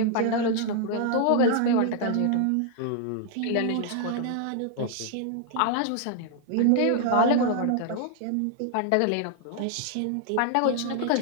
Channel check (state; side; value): different; both; correlation 0.00